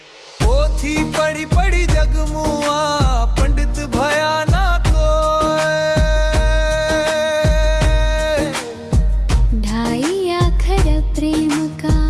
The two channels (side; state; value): both; identical; correlation 1.00